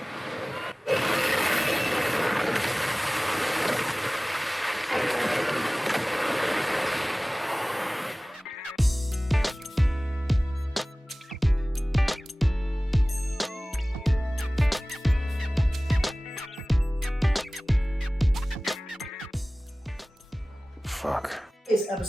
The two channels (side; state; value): both; normal; correlation 0.98